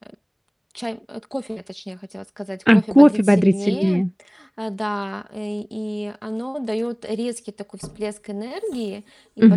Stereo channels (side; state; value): both; identical; correlation 1.00